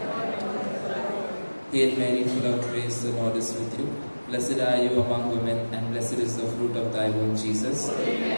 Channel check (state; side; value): inverted; both; correlation -1.00